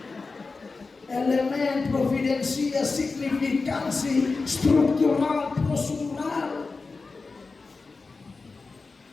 Elemen providensia, signifikansi, struktural, prosedural.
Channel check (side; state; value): right; quieter; 4.1 dB